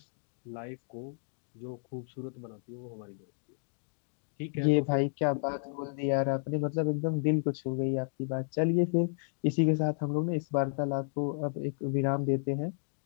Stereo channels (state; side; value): silent; right; digital silence